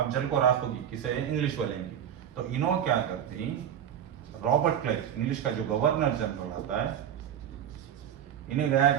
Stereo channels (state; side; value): quieter; left; 9.6 dB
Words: जल को राख होगी किसे? इंग्लिश वाले की। तो इनो क्या करती, रॉबर्ट क्लाइव इंग्लिश का जो गवर्नर जनरल आता है, इन्हें